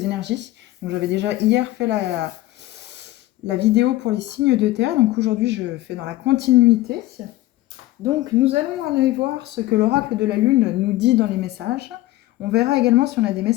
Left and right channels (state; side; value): quieter; right; 16.7 dB